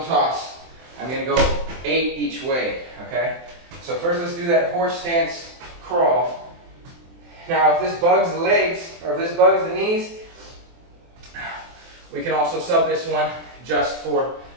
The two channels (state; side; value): late; left; 23 ms